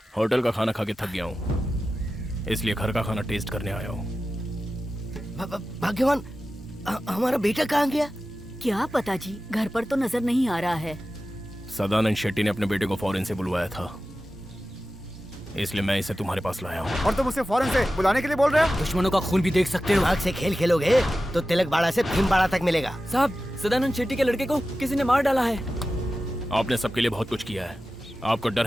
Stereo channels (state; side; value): normal; both; correlation 0.94